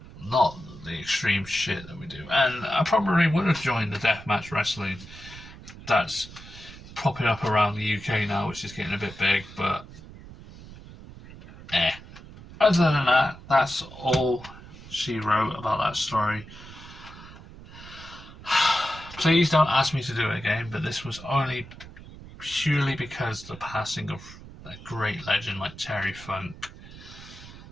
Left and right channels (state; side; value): noise; right; rumble, 17 dB below the sound